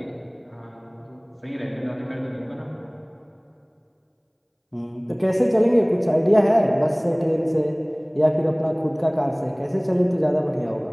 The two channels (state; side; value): identical; both; correlation 1.00